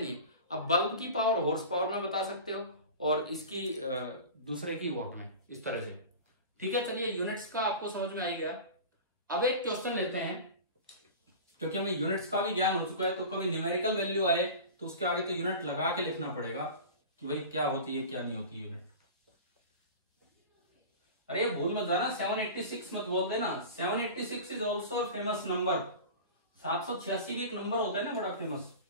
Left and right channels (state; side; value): inverted; both; correlation -0.33